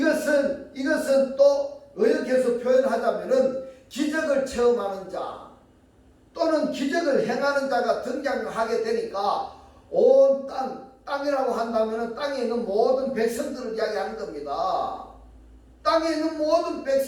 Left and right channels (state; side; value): identical; both; correlation 1.00